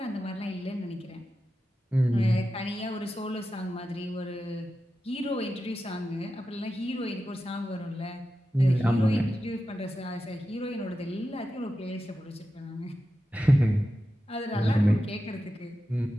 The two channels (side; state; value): both; normal; correlation 0.91